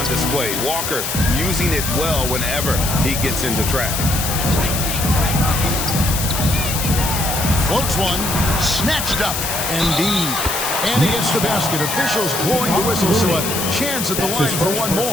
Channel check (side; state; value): left; noise; hiss, 3 dB below the sound